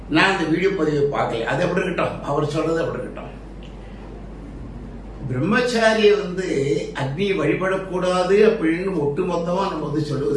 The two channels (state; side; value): identical; both; correlation 1.00